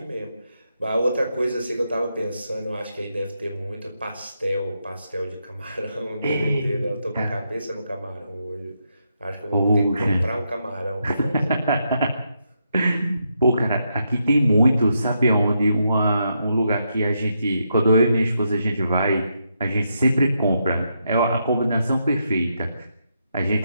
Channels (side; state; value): both; inverted; correlation -0.81